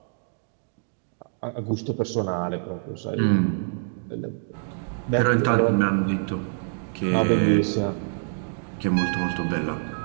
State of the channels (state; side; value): silent; left; digital silence